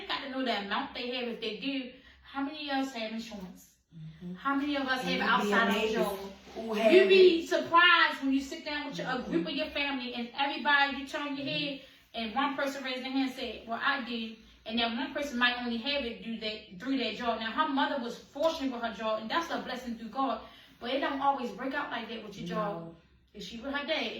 got to know the amount they have if they do. How many of us have insurance? How many of us have outside of job? You'd be surprised when you sit down with a group of your family and everybody, you turn your head and one person raised their hand and said, well, I do. And then one person might only have it through their job. Now, her mother was fortunate with her job, and that's a blessing through God. But it don't always break out like that with your job. If she with her dad,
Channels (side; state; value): both; identical; correlation 1.00